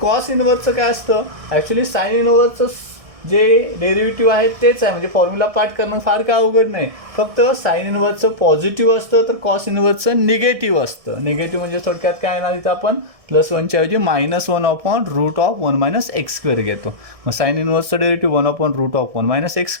इनव्हर्सचं काय असतं, ॲक्च्युली साईन इनव्हर्सचं जे डेरिव्हेटिव्ह आहे तेच आहे, म्हणजे फॉर्म्युला पार्ट करणं फार काय अवघड नाही. फक्त साईन इनव्हर्सचं पॉझिटिव्ह असतं, तर कॉस इनव्हर्सचं निगेटिव्ह असतं. निगेटिव्ह म्हणजे थोडक्यात काय येणार, इथं आपण +1च्या ऐवजी -1/√1 मायनस एक्स स्क्वेअर घेतो. मग साईन इनव्हर्सचं डेरिव्हेटिव्ह 1/√1 मायनस एक्स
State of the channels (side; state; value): left; late; 1.6 ms